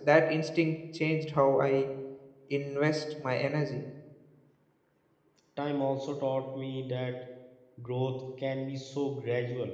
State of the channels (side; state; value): both; identical; correlation 1.00